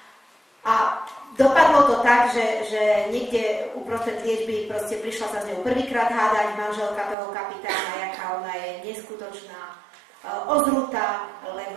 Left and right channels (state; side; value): drops out; left; at 7.2 s